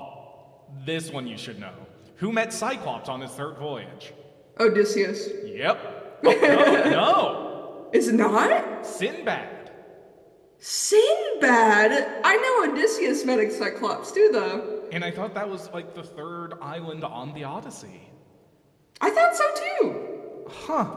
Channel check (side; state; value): both; identical; correlation 1.00